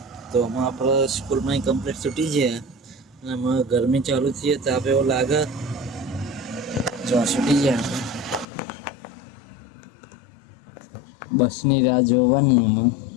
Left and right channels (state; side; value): drops out; right; at 8.5 s